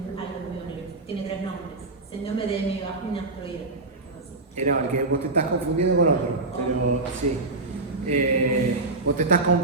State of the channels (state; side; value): quieter; left; 3.2 dB